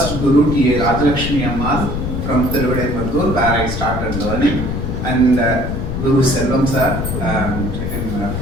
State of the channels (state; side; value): noise; left; rumble, 3 dB below the sound